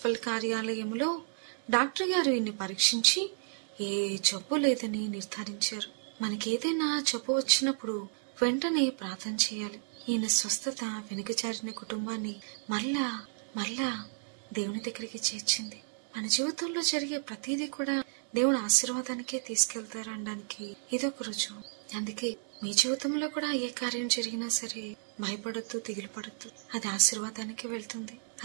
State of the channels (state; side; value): silent; left; 56 dB below the other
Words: కార్యాలయంలో డాక్టర్ గారు ఈయన్ని పరీక్షించి ఏ జబ్బు లేదని నిర్ధారించారు. మనకేదైనా జబ్బు వచ్చినప్పుడు వెంటనే ప్రార్థన చేయాలి. ఈయన స్వస్థత వెనుకజారిన కుటుంబాన్ని మళ్ళా దేవుని దగ్గరికి చేర్చింది. మన జీవితంలో జరిగే ప్రతిదీ కూడా దేవుని ఆశీర్వాదానికే తీసుకెళ్తారనడానికి ఇదొక రుజువు. అందుకే మీ జీవితంలో కూడా ఏ కార్యం జరిగినా సరే భయపడద్దు, దిగులు పడద్దు. అది ఆశీర్వాదానికి వెళ్తుంది.